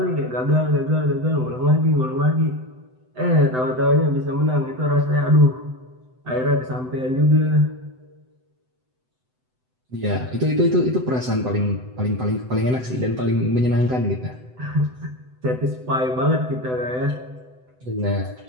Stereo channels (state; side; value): late; left; 7.9 ms